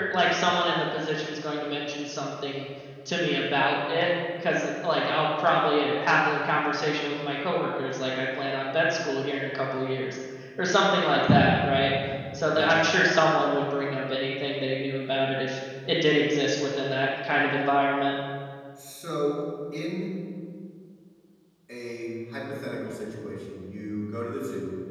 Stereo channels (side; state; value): both; identical; correlation 1.00